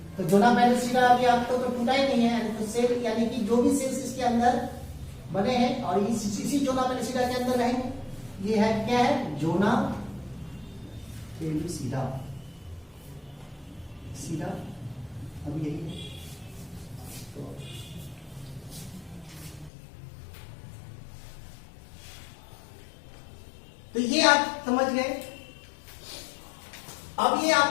तो जोना पेलिसिडा अभी आपको तो टूटा ही नहीं है, तो सेल यानी कि जो भी सेल्स इसके अंदर बने हैं और इसी जोना पेलिसिडा के अंदर रहेंगे। ये है क्या है, जोना पेलिसिडा, सीधा अब यही है। तो ये आप समझ गए। अब ये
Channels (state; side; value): drops out; right; at 19.7 s